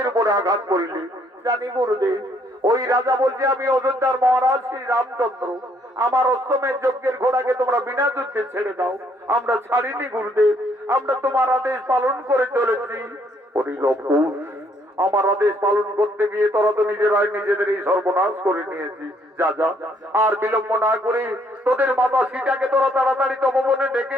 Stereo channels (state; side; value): normal; both; correlation 0.67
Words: উপরে আঘাত করিলি? জানি গুরুদেব, ওই রাজা বলছে আমি অযোধ্যার মহারাজ শ্রী রামচন্দ্র, আমার অষ্টমের যজ্ঞের ঘোড়াকে তোমরা বিনা যুদ্ধে ছেড়ে দাও। আমরা ছাড়িনি গুরুদেব, আমরা তোমার আদেশ পালন করে চলেছি। ওরে লবকুশ, আমার আদেশ পালন করতে গিয়ে তোরা তো নিজেরাই নিজেদের এই সর্বনাশ করে নিয়েছি। যা যা, আর বিলম্ব না করে তোদের মাতা সীতাকে তোরা তাড়াতাড়ি তপবনে